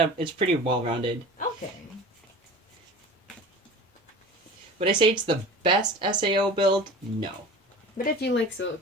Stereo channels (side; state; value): both; normal; correlation 0.37